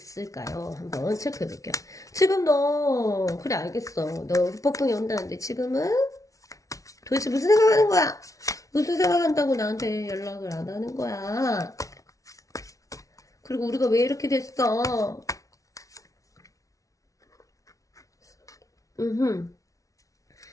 한번 체크해 볼게요. 지금 너 그래 알겠어. 너 후폭풍이 온다는데 지금은 도대체 무슨 생각하는 거야? 무슨 생각한다고 나한테 연락을 안 하는 거야? 그리고 우리가 왜 이렇게 됐어? 음.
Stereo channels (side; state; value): right; late; 0.17 ms